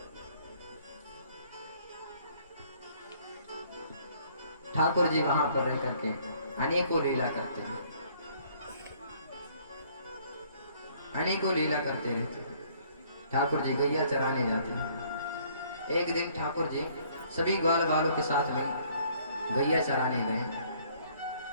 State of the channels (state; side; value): inverted; both; correlation -0.61